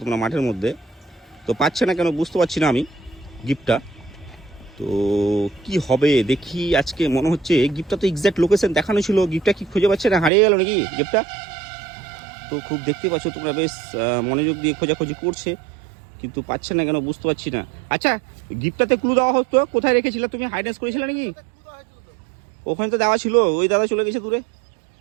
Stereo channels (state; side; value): drops out; left; at 10.3 s